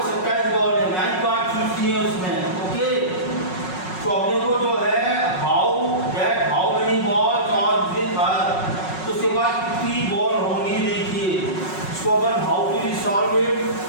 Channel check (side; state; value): right; late; 5.4 ms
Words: 27 बॉल है, 9 कार्ड चूज किए उसने। ओके, तो अपने को जो है how many balls are with her, तो उसके पास कितनी बॉल होंगी। देखिए इसको अपन how to solve it.